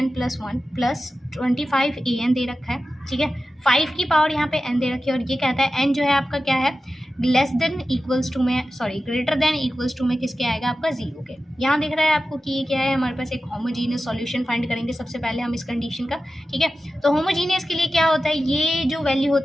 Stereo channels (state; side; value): normal; both; correlation 0.93